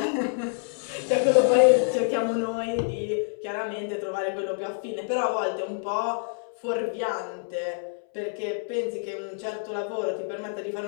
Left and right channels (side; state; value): right; silent; 60 dB below the other